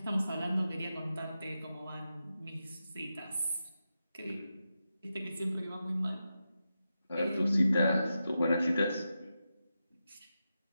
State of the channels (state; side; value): inverted; both; correlation -0.89